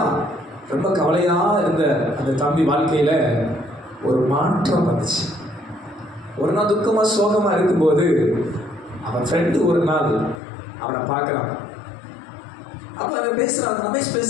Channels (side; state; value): right; drops out; at 10.4 s